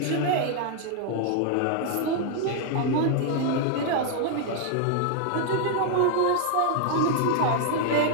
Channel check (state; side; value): different; both; correlation 0.00